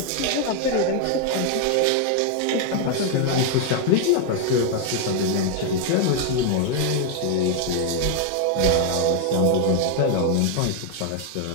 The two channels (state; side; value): different; both; correlation 0.00